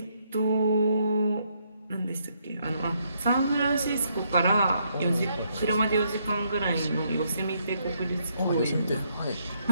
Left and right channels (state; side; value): inverted; both; correlation -0.73